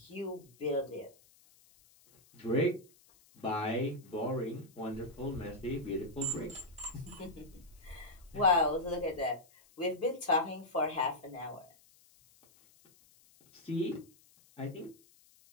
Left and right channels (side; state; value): left; noise; hiss, 28 dB below the sound